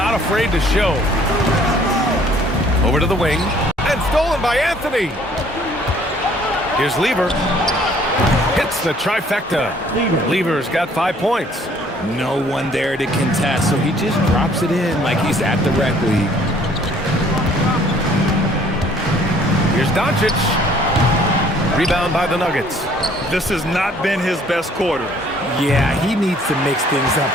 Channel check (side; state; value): both; normal; correlation 0.59